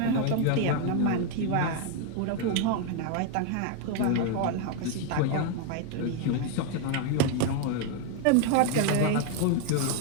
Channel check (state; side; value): different; both; correlation 0.01